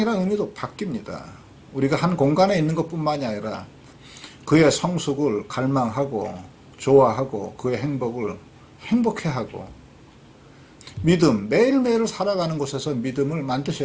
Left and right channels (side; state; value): both; identical; correlation 1.00